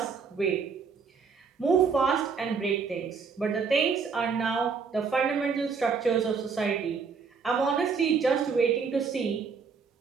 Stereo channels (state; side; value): quieter; left; 5.5 dB